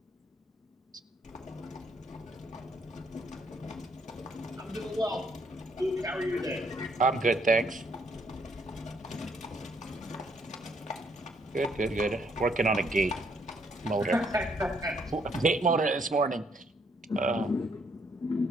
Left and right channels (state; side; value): normal; both; correlation 0.70